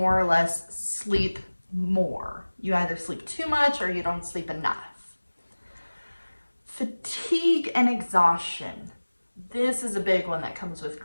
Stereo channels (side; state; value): both; inverted; correlation -1.00